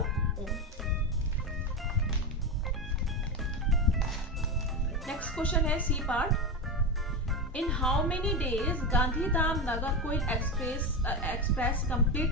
own. Next question है C part. In how many days Gandhidham Nagercoil express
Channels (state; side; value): normal; both; correlation 0.17